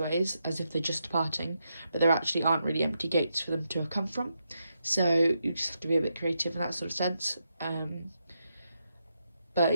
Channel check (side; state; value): both; inverted; correlation -0.83